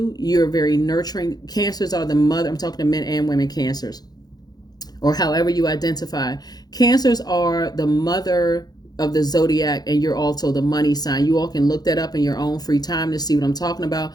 very nurturing. Cancers are the mother. I'm talking to men and women Cancers, or however you identify. Cancers are the mother of the zodiac, and you're also the money sign. You all can look that up in your own free time to see what I'm talking about.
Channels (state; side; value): late; right; 0.19 ms